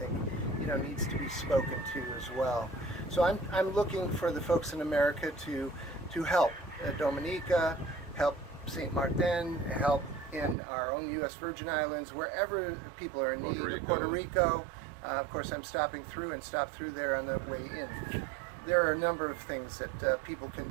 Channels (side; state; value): left; drops out; at 10.6 s